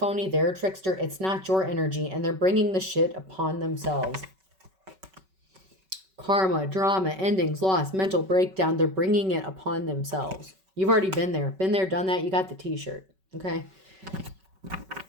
They're a trickster. It's not your energy. And they're bringing the shit upon themselves. Karma, drama, endings, loss, mental breakdown. They're bringing it upon themselves. You've already been there. Been there, done that. You got the t-shirt. Okay?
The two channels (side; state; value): left; late; 5.3 ms